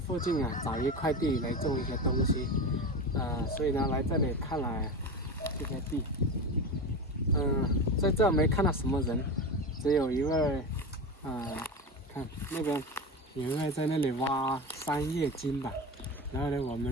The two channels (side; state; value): both; normal; correlation 0.24